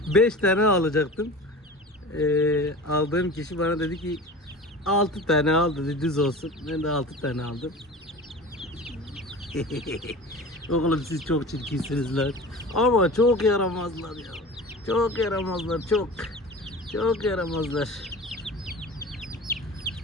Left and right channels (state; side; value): normal; both; correlation 0.36